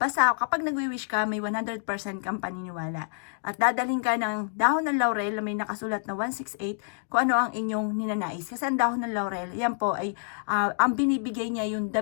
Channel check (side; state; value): right; silent; digital silence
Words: Basta kapag nagwi-wish ka, may 100% kang paniniwala. At dadalhin ka ng dahon ng laurel na may nakasulat na 168 kung ano ang inyong ninanais. Kasi ang dahon ng laurel, yan po ay ang binibigay niya yung the